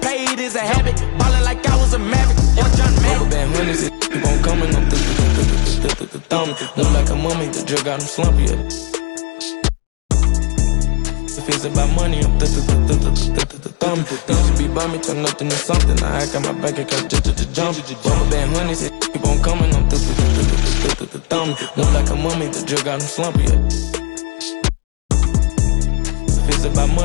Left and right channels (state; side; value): quieter; right; 34.0 dB